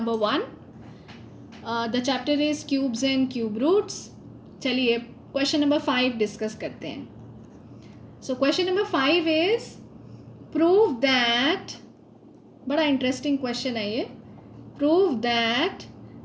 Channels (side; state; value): both; identical; correlation 1.00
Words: 1. The chapter is cubes and cube roots. चलिए question number 5 discuss करते हैं. So question number 5 is prove that, बड़ा interesting question है ये. Prove that